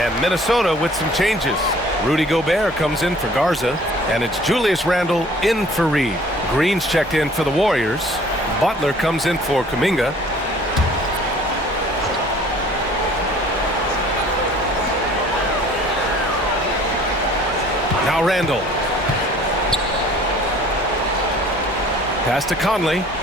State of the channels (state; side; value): normal; both; correlation 0.52